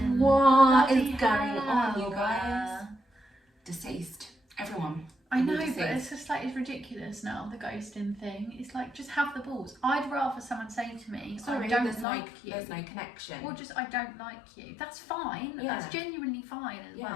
What is going on, you guys? Deceased. Everyone. I know, but it's just like, it's ridiculous now, the ghosting thing. It's like, just have the balls. I'd rather someone say to me, sorry, I don't like you. There's no connection. Or just, I don't like you. That's fine. Yeah. That's genuinely fine as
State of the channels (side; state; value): right; drops out; at 12.1 s